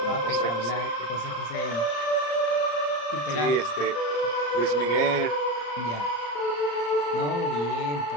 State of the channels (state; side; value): late; right; 34 ms